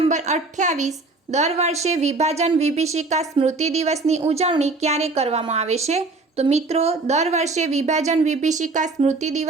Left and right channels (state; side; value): quieter; left; 3.5 dB